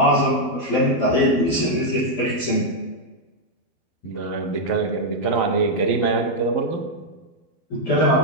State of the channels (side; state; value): right; late; 12 ms